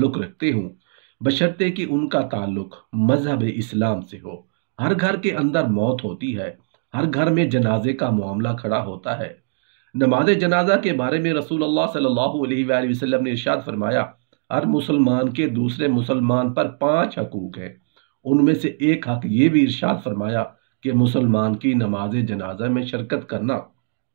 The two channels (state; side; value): silent; left; digital silence